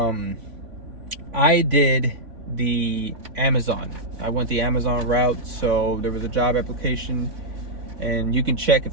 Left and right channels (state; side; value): late; left; 3.5 ms